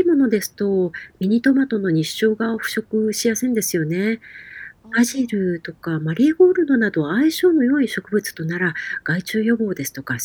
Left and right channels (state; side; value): identical; both; correlation 1.00